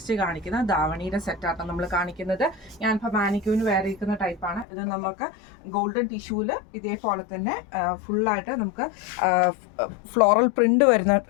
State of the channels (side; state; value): right; drops out; at 4.7 s